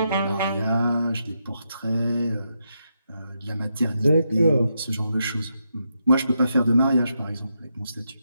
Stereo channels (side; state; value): both; inverted; correlation -0.83